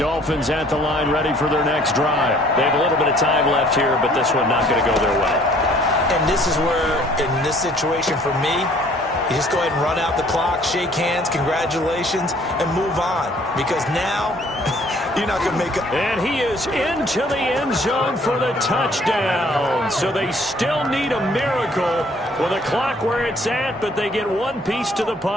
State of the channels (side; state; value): both; normal; correlation 0.58